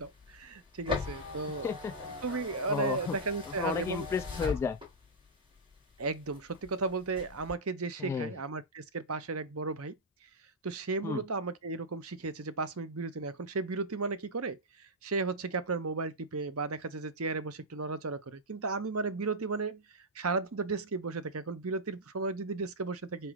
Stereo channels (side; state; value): both; normal; correlation -0.07